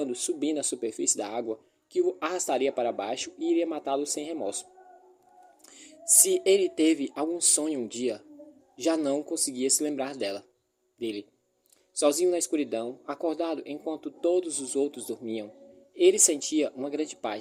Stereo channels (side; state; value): both; identical; correlation 1.00